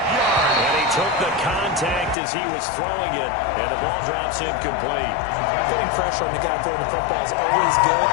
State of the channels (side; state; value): right; drops out; at 2.1 s